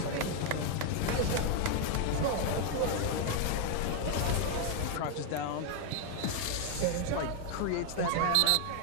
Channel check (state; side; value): different; both; correlation 0.01